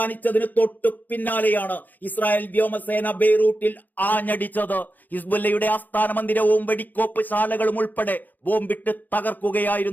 തൊട്ടു പിന്നാലെയാണ് ഇസ്രായേൽ വ്യോമസേന ബെയ്റൂട്ടിൽ ആഞ്ഞടിച്ചത്. ഹിസ്ബുല്ലയുടെ ആസ്ഥാന മന്ദിരവും വെടിക്കോപ്പ് ശാലകളും ഉൾപ്പെടെ ബോംബിട്ട്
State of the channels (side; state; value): right; late; 0.085 ms